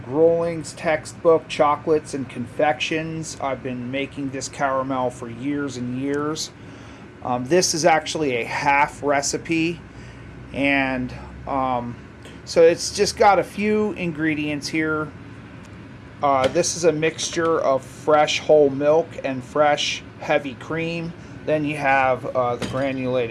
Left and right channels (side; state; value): both; identical; correlation 1.00